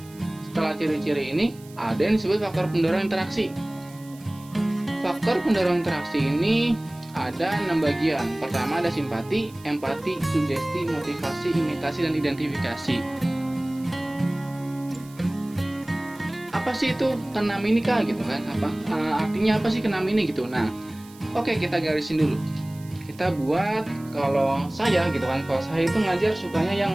ciri-ciri ini, ada yang disebut faktor pendorong interaksi. Faktor pendorong interaksi ini ada 6 bagian. Pertama ada simpati, empati, sugesti, motivasi, imitasi, dan identifikasi. Apa sih itu keenam ini kak gitu kan? Artinya apa sih keenam ini gitu? Nah, oke, kita garisin dulu. Kita buat, kalau saya gitu kan, kalau saya itu ngajar sukanya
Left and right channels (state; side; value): noise; right; hiss, 23 dB below the sound